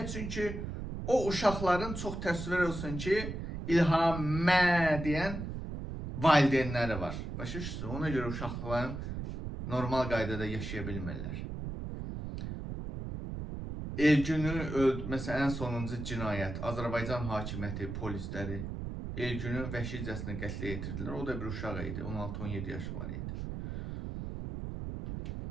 Çünki o uşaqların çox təsvir olsun ki, İlhamə deyən valideynləri var. Başa düşürsünüz? Ona görə uşaqların normal qaydada yaşaya bilmirlər. Elgünü məsələn, ən sonuncu cinayət, Azərbaycan hakimiyyəti, polisləri Elgünü vəhşicəsinə qətlə yetirdilər. O da bir uşaq idi, 16-17 yaşı var idi.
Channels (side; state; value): right; noise; rumble, 6 dB below the sound